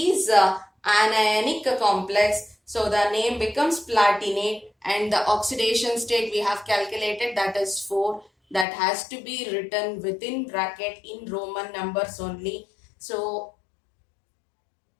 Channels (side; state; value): right; drops out; at 8.7 s